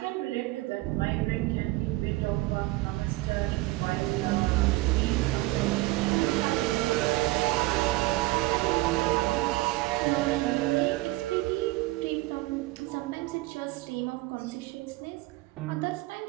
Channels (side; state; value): left; quieter; 20.0 dB